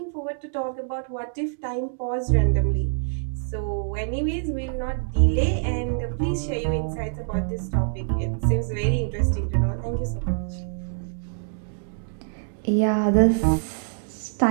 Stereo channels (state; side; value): silent; left; digital silence